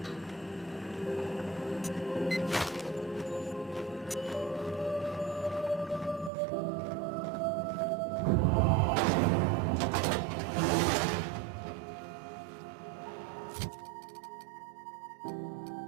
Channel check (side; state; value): left; drops out; at 6.3 s